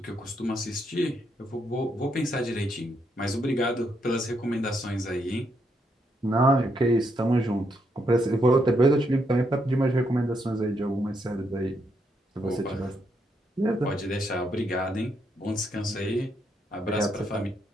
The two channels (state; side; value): normal; both; correlation 0.77